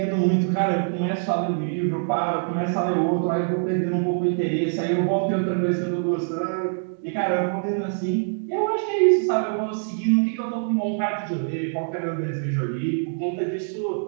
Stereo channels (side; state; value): left; silent; digital silence